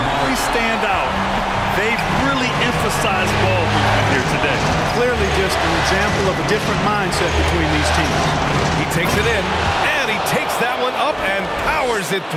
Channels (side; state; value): both; identical; correlation 1.00